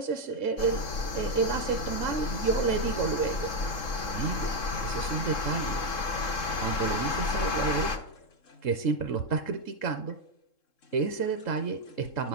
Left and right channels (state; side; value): late; right; 3.7 ms